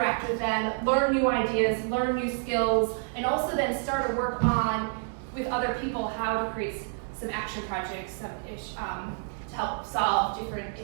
with them, learn new ideas, learn new skills, and also then start to work on, with other people, how to create some action projects to help solve different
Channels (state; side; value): silent; left; 59 dB below the other